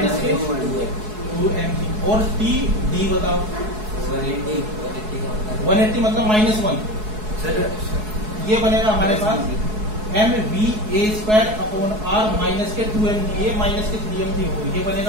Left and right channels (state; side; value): late; left; 4.7 ms